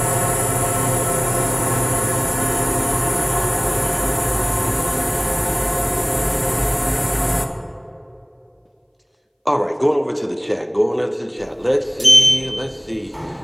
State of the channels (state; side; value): identical; both; correlation 1.00